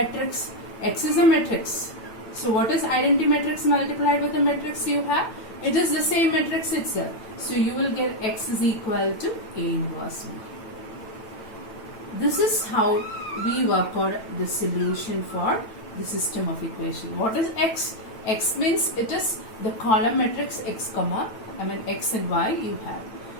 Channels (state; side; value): late; right; 9.0 ms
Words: X is a matrix. So what is identity matrix multiplied with the matrix you have? It is the same matrix itself. So you will get X is equal to A inverse B. This is how we work out the solution for the system of equation. What is X? X means it is the column matrix X and Y you have.